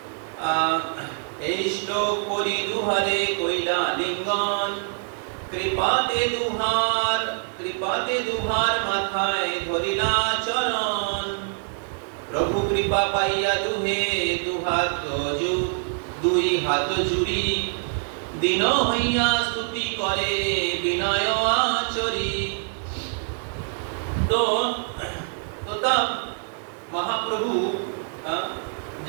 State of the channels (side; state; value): left; silent; 62 dB below the other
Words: এই শ্লোক করি দুহারে কইলা লিঙ্গন, কৃপাতে দুহার মাথায় ধরিলা চরণ, প্রভু কৃপা পাইয়া দুই হাত জুড়ি, দিন হইয়া স্তুতি করে বিনয় আচরি। तो तब महाप्रभु